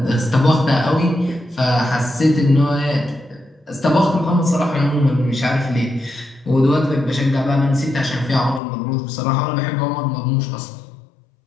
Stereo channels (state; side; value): drops out; right; at 8.6 s